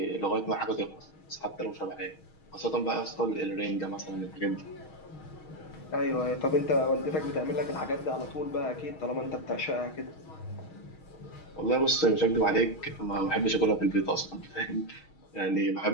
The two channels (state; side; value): late; right; 6.4 ms